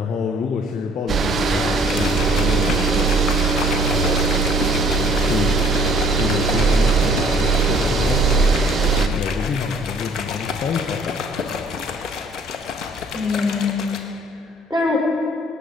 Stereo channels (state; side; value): normal; both; correlation 0.57